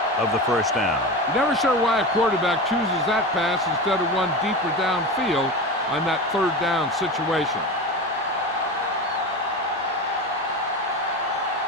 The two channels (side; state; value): both; normal; correlation 0.25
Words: of the first down. You're never sure why a quarterback chooses that pass instead of one deeper downfield on that 3rd down situation.